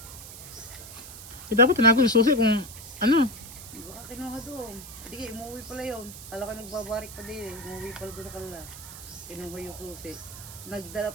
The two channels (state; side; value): noise; right; hiss, 14 dB below the sound